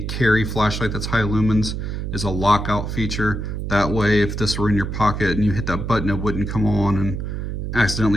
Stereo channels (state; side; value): noise; right; hum, 4 dB below the sound